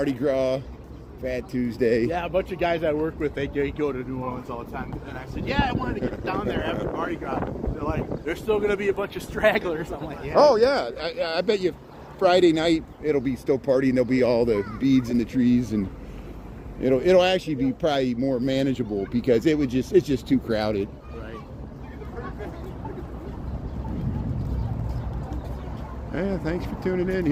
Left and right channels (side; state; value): both; identical; correlation 1.00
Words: Gras, Fat Tuesday. Yeah, a bunch of guys I work with, they go to New Orleans all the time. And I said, yeah, I wanted to get down there after Mardi Gras. They're like, there's still going to be a bunch of stragglers. I'm like, yeah. Oh, yeah. I bet you Friday night it'll be still partying. There'll be all the beads in the trees, and it'll actually be probably more manageable because it's just too crowded. Right. Yeah, thanks for tuning in